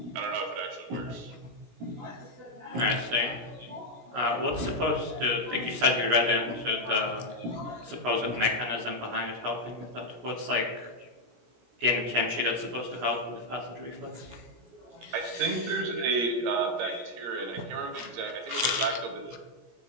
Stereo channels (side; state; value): left; late; 17 ms